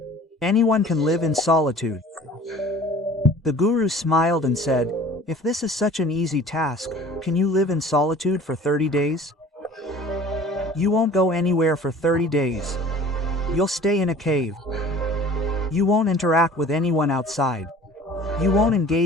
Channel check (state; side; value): normal; both; correlation 0.46